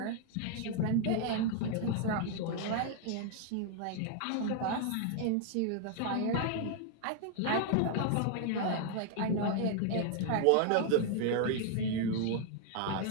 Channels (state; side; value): different; both; correlation 0.00